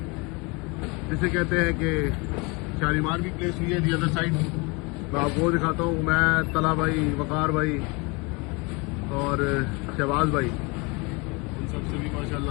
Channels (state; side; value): quieter; right; 28.3 dB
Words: जिसे कहते हैं कि शालीमार भी प्लेस हुई है दी अदर साइड। मैं आपको दिखाता हूँ। मैं तला भाई, वकार भाई और शहबाज भाई, इन सबसे भी